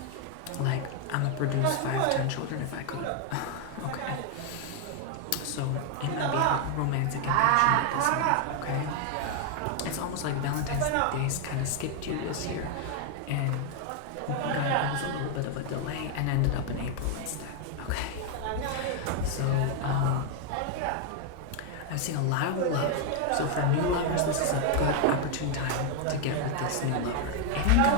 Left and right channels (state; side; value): different; both; correlation 0.01